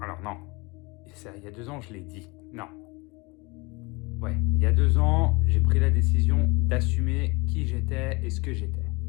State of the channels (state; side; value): quieter; right; 26.3 dB